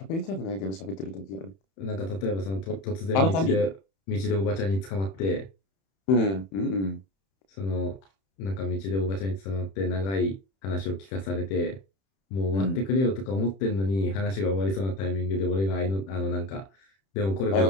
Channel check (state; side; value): late; right; 31 ms